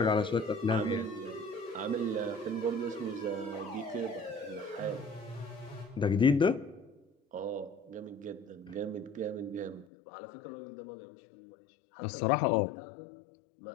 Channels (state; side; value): drops out; right; at 9.9 s